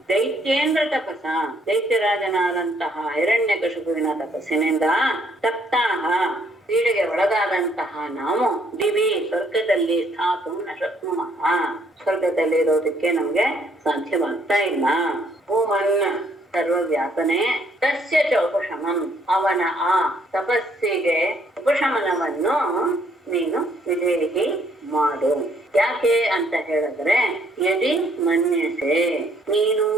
ದೈತ್ಯೇಂದ್ರ ತಪಸ, ದೈತ್ಯರಾಜನಾದಂತಹ ಹಿರಣ್ಯಕಶಿಪುವಿನ ತಪಸ್ಸಿನಿಂದ ತಪ್ತಾಹ, ಪೀಡೆಗೆ ಒಳಗಾದಂತಹ ನಾವು ದಿವಿ ಸ್ವರ್ಗದಲ್ಲಿ ಸ್ಥಾತು ನ ಶಕ್ನುಮಃ, ಸ್ವರ್ಗದಲ್ಲಿ ಇರೋದಕ್ಕೆ ನಮ್ಗೆ ಸಾಧ್ಯವಾಗ್ತಾ ಇಲ್ಲ. ಭೂಮನ್ನ ಸರ್ವವ್ಯಾಪನೆ, ತಸ್ಯ ಚ ಉಪಶಮಂ, ಅವನ ಆ ತಪಸ್ಸಿಗೆ ಉಪಶಮನವನ್ನು ನೀನು ವಿಧೇಹಿ ಮಾಡು. ಯಾಕೆ ಅಂತ ಹೇಳಿದ್ರೆ, ಯದಿ ಮನ್ಯಸೆ, ನೀನು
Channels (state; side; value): normal; both; correlation 0.67